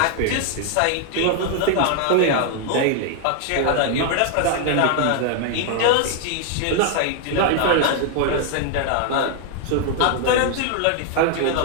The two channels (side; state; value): both; different; correlation 0.00